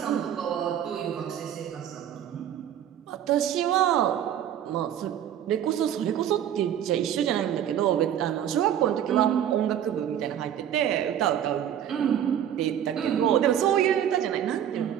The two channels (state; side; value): quieter; left; 10.2 dB